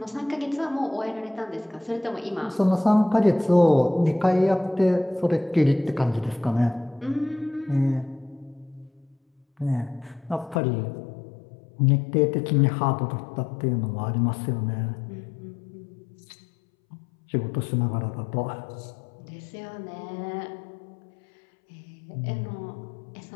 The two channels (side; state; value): right; drops out; at 10.6 s